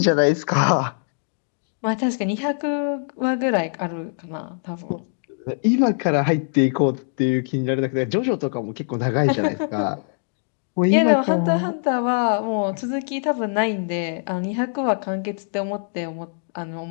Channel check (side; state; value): right; silent; digital silence